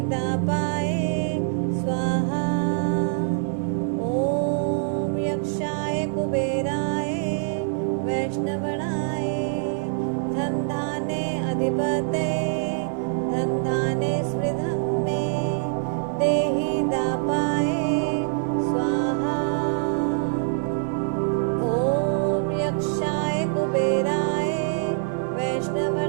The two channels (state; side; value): silent; left; 62 dB below the other